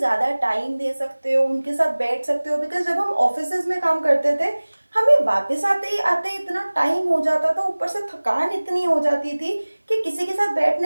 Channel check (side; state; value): both; inverted; correlation -1.00